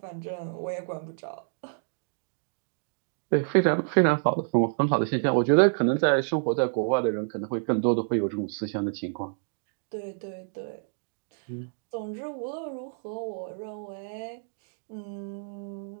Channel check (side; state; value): left; silent; digital silence